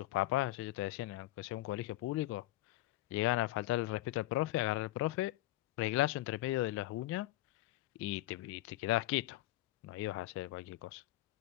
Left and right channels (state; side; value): quieter; right; 16.9 dB